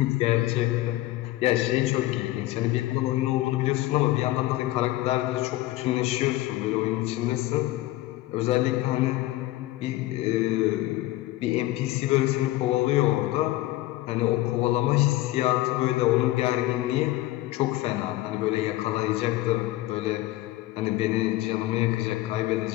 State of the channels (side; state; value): right; quieter; 16.9 dB